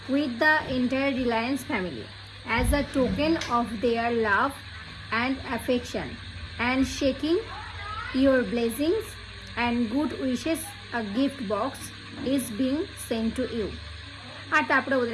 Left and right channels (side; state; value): both; identical; correlation 1.00